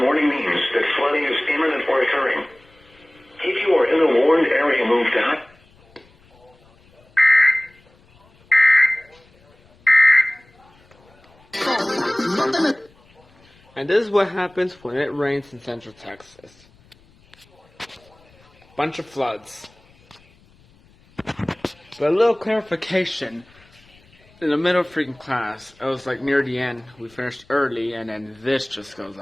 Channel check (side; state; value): left; noise; rumble, 30 dB below the sound